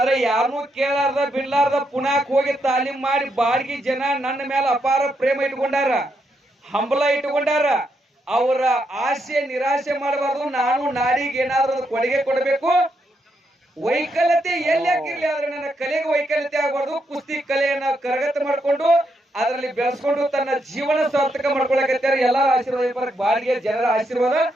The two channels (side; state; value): both; normal; correlation 0.80